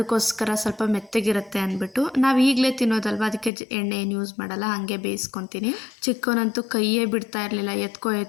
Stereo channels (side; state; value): right; drops out; at 3.5 s